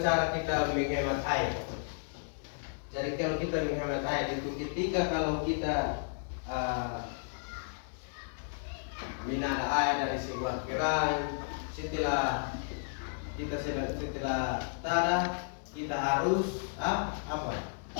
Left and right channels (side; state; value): right; silent; digital silence